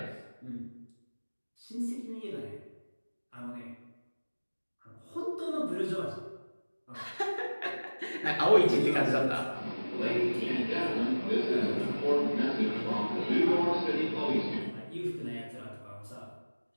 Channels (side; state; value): both; inverted; correlation -1.00